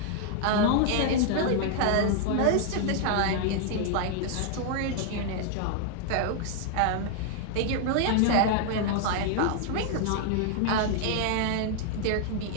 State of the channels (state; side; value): different; both; correlation 0.00